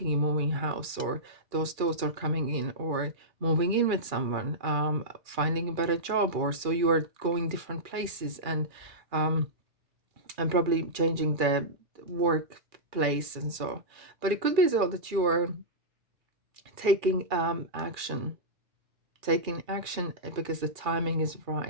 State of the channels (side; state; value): left; late; 2.4 ms